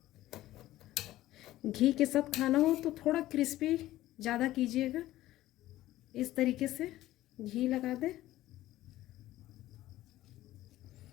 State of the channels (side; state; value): right; quieter; 15.2 dB